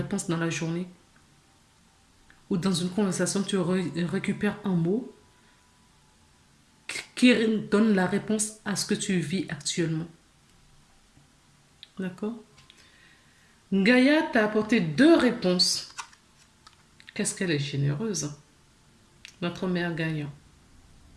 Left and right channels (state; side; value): identical; both; correlation 1.00